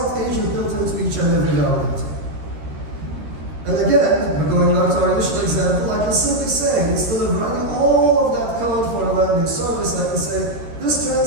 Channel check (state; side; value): late; left; 13 ms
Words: agent built into each and every validator. And again, going back to our initial example, I can simply say, instead of writing all of that code for a lending service, I can say, this